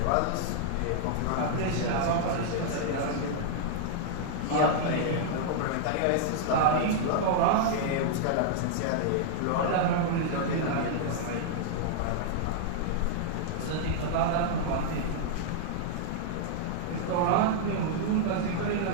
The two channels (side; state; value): both; different; correlation -0.01